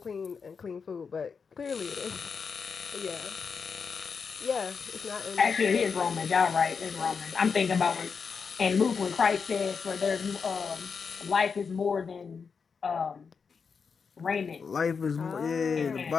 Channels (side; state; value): right; quieter; 5.7 dB